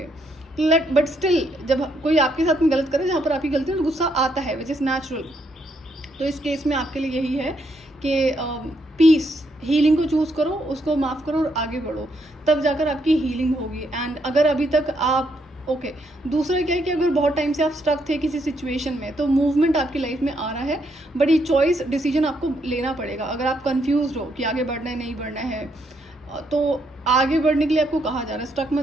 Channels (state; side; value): normal; both; correlation 0.75